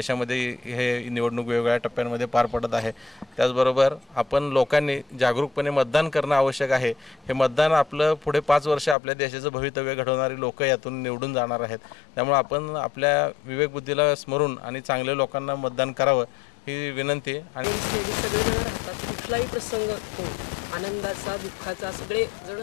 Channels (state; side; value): drops out; right; at 9.0 s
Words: हे निवडणूक वेगवेगळ्या टप्प्यांमध्ये पार पडत आहे. त्याचबरोबर आपण लोकांनी जागरूकपणे मतदान करणं आवश्यक आहे. हे मतदान आपलं पुढे 5 वर्ष आपल्या देशाचं भवितव्य घडवणारी लोक यातून निवडून जाणार आहेत. त्यामुळे आपण आपल्या विवेकबुद्धीला स्मरून आणि चांगल्या लोकांना मतदान करावं ही विनंती. आणि कुठलाही प्रसंग असतो, आनंदाचा, दुःखाचा, सगळे जण